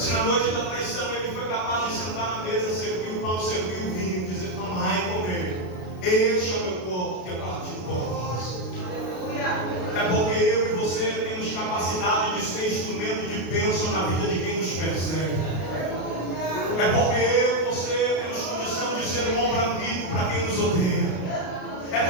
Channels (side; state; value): right; late; 33 ms